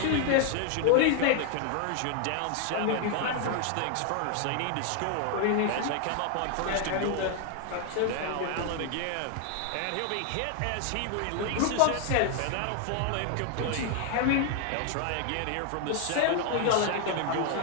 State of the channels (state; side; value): different; both; correlation 0.00